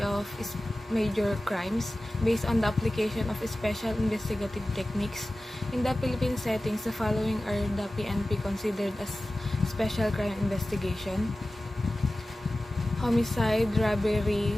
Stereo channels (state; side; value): normal; both; correlation 0.96